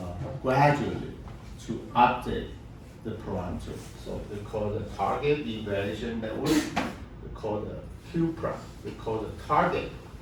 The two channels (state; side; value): identical; both; correlation 1.00